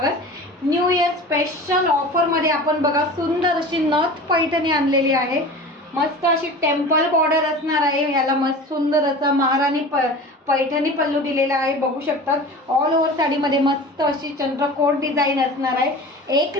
न्यू इयर स्पेशल ऑफर मध्ये आपण बघा सुंदर अशी नथ पैठणी आणलेली आहे. मस्त अशी टेम्पल बॉर्डर असणार आहे. याला मस्त सुंदर असा महाराणी पैठणी पल्लू दिलेला आहे. बघू शकतात ऑल ओव्हर साडीमध्ये मस्त अशी चंद्रकोर डिझाईन असणार आहे. एक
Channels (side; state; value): both; normal; correlation 0.36